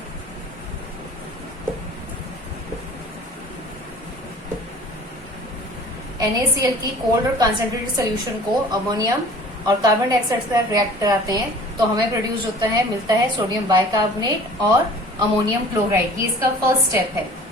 NaCl की कोल्ड और कंसंट्रेटेड सॉल्यूशन को अमोनियम और कार्बन डाइऑक्साइड से रिएक्ट कराते हैं तो हमें प्रोड्यूस होता है, मिलता है सोडियम बाइकार्बोनेट और अमोनियम क्लोराइड। ये इसका फर्स्ट स्टेप है।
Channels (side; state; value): both; normal; correlation 0.47